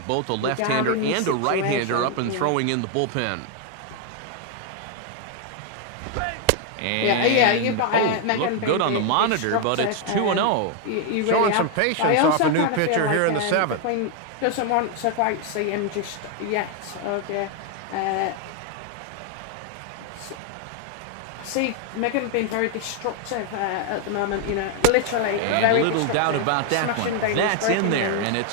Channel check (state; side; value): different; both; correlation 0.00